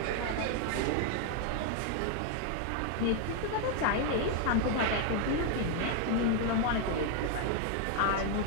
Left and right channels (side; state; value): both; different; correlation 0.00